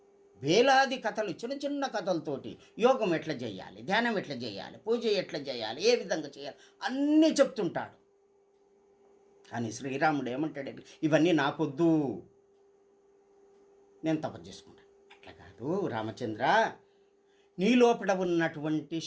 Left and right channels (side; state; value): both; identical; correlation 1.00